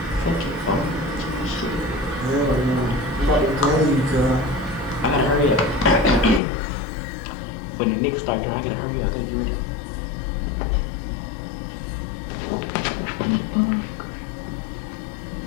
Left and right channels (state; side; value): drops out; right; at 6.4 s